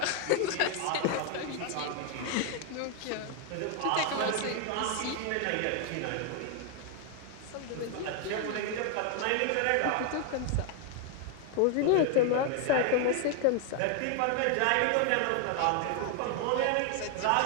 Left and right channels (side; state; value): both; different; correlation 0.01